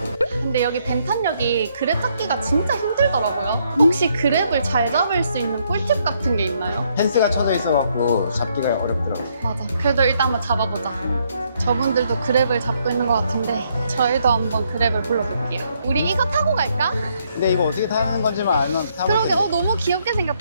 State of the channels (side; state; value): both; inverted; correlation -0.72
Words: 근데 여기 벤탄역이 그랩 잡기가 진짜 힘들더라고요. 혹시 그랩을 잘 잡을 수 있는 꿀팁 같은 게 있나요? 펜스가 쳐져 있어갖고 잡기가 어렵더라고. 맞아. 그래도 일단 한번 잡아보자. 저분들도 그랩을 잡고 있는 것 같은데 저희도 한번 그랩을 불러볼게요. 우리 이거 타고 갈까? 근데 이거 어떻게 타는 건지만 알면 타볼 그러게, 텐데. 너무 귀엽게